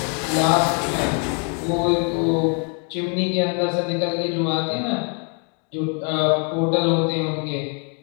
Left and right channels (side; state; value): right; quieter; 39.5 dB